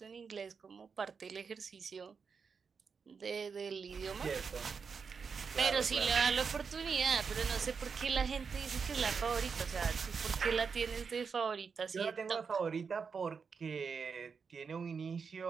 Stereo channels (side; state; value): left; quieter; 5.7 dB